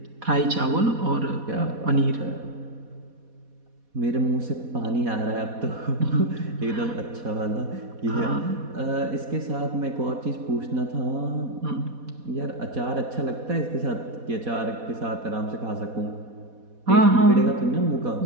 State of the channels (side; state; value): left; late; 4.1 ms